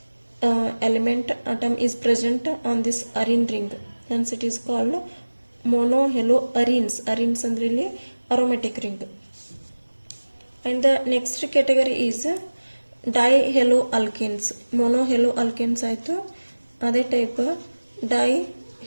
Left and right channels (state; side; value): inverted; both; correlation -1.00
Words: element atom is present on this arene ring, hence it is called mono haloarenes. arenes ಅಂದ್ರೆ ಇಲ್ಲಿ aromatic ring. And the next category is dihaloalkanes. mono haloalkanes ಆಯ್ತು, ಅದೇ ಟೈಪ್